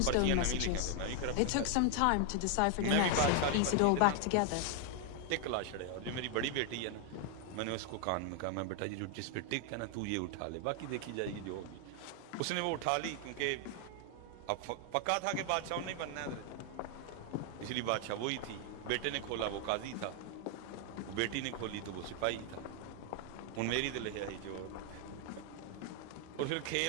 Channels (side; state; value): both; different; correlation 0.00